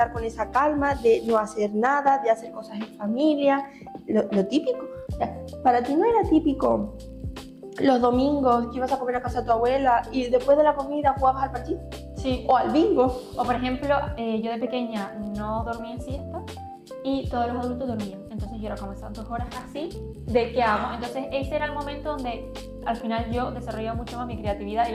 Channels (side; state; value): both; identical; correlation 1.00